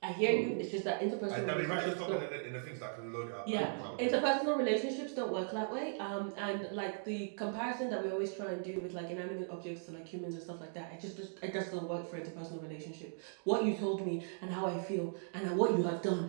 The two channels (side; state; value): left; silent; digital silence